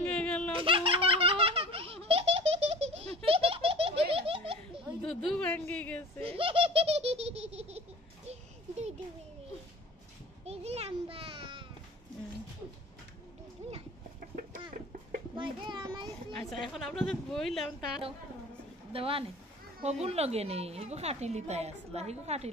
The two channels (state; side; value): normal; both; correlation 0.42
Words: গেল দুধু ভাঙ্গে গেছে আচ্ছা এখন আপনাদের বইলাম তার দেওয়া নেই হগুন লগে নেই হিগু খাটিলি তাই আসলা হিগু